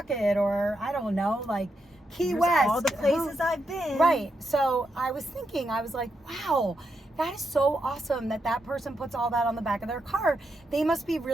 or I don't know, like Key West. All the places I've been. Right. So I was thinking, I was like, wow, that is so awesome that person puts all that on the back of their car. They must be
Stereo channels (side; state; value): both; normal; correlation 0.83